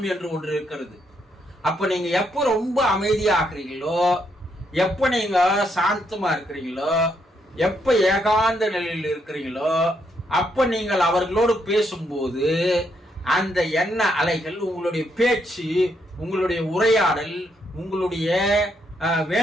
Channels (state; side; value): normal; both; correlation 0.76